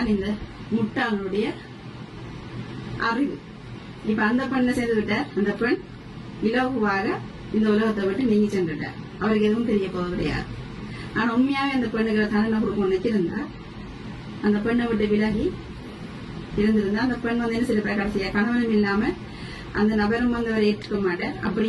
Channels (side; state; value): both; identical; correlation 1.00